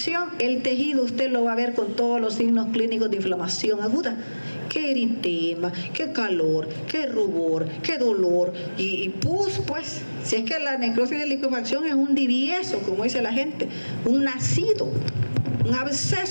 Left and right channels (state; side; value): inverted; both; correlation -1.00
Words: el tejido usted lo va a ver con todos los signos clínicos de inflamación aguda. Qué eritema, qué calor, qué rubor, qué dolor y pus, pues, si es que la necrosis de licuefacción es un divieso, como dice la gente, un nacido, un